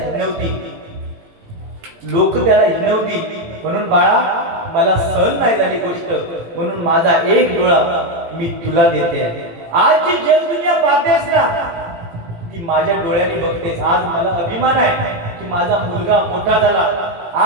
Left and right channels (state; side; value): late; left; 18 ms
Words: हिणवतील. म्हणून बाळा, मला सहन नाही झाली गोष्ट, म्हणून माझा एक डोळा मी तुला देते. आज जी जगदुनिया पाहतेस ना, ती माझ्या डोळ्याने बघतेस. आज मला अभिमान आहे की माझा मुलगा मोठा झाला.